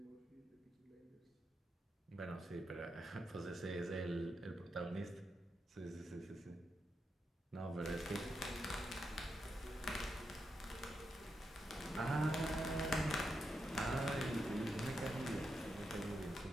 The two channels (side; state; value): both; normal; correlation 0.85